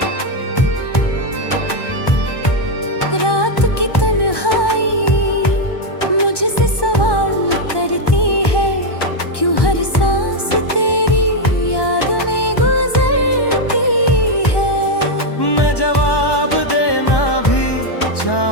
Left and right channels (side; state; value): right; late; 1.1 ms